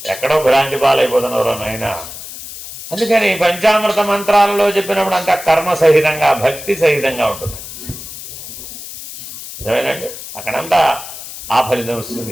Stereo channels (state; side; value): noise; left; hiss, 12 dB below the sound